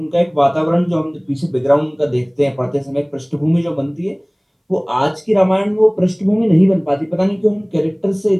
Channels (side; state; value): both; identical; correlation 1.00